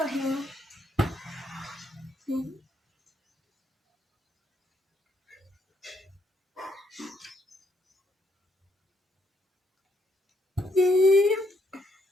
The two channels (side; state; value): both; normal; correlation 0.73